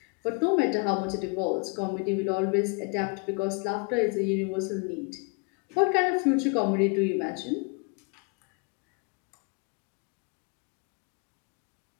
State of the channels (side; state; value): right; quieter; 32.5 dB